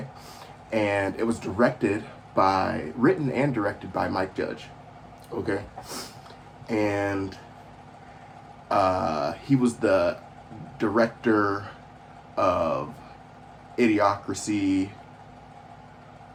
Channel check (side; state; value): both; identical; correlation 1.00